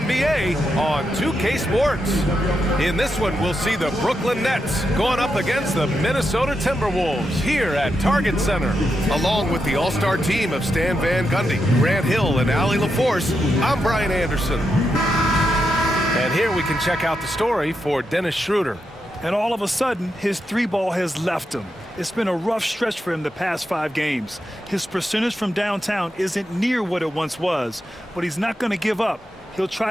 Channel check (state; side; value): normal; both; correlation 0.85